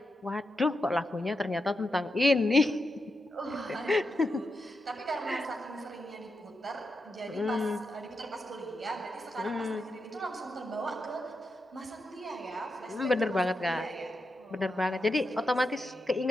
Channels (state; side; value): normal; both; correlation 0.86